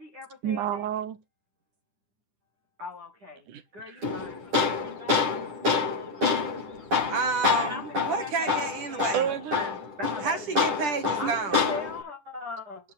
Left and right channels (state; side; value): late; left; 10 ms